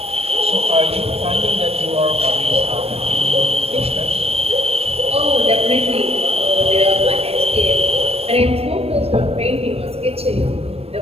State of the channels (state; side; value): late; left; 0.29 ms